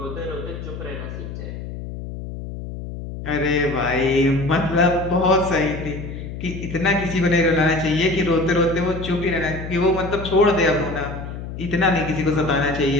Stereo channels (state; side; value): noise; left; hum, 9 dB below the sound